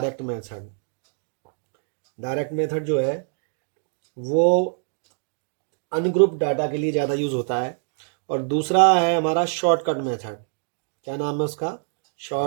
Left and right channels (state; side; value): silent; left; 61 dB below the other